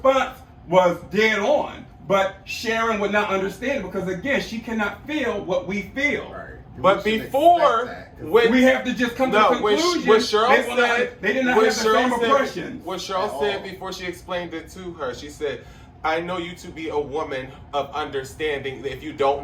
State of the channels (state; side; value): identical; both; correlation 1.00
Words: was dead on. But Sharon would not understand it because, again, she cannot feel what we feel. Right. But before, when we have to just come to a conclusion, what Sheryl said, they did not have the same impressions. What Sheryl said before she explained it to her, she said, I know you to be a woman of understanding. If you